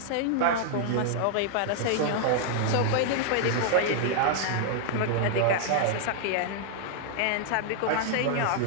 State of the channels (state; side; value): different; both; correlation -0.01